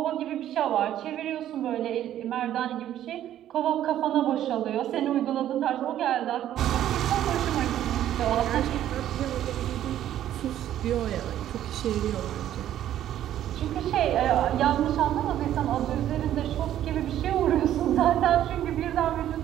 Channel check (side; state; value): left; quieter; 11.8 dB